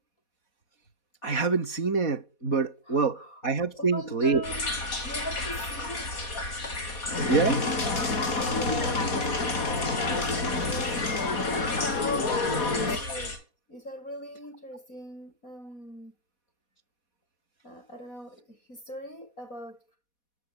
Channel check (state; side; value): late; right; 4.2 ms